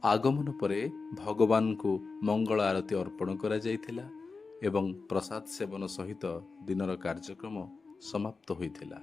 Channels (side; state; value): right; quieter; 4.3 dB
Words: आगमन परे भगवान को मंगल आरती अर्पण करा जाइथिला एवं प्रसाद सेवन सहित दिनर कार्यक्रम समाप्त होइथिला।